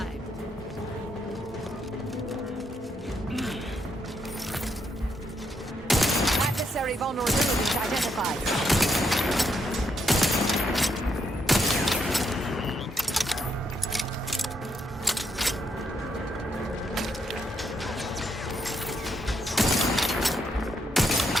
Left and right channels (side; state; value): both; normal; correlation 0.77